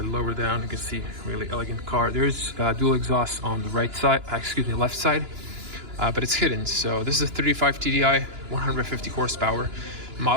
lower down, you can see really elegant car. There's dual exhaust on the right side, left side, but it's hidden. So this is a 35 TDI, 150 horsepower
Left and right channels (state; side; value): late; left; 2.9 ms